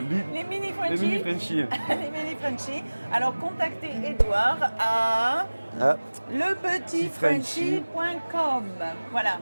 Les mini les Frenchies. mini Frenchies. Les mini Frenchies. Alors contactez Edouard à Ah, lepetitfrenchie.com. Voilà,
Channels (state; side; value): inverted; both; correlation -1.00